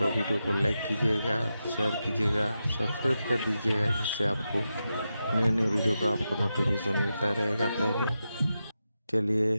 वीडियो को लाइक कीजिएगा, शेयर कीजिएगा, सब्सक्राइब कर दीजिएगा, जिससे आपको नए नए वीडियो का आपको नोटिफिकेशन मिलता रहेगा पहले। चलिए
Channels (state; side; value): inverted; both; correlation -0.89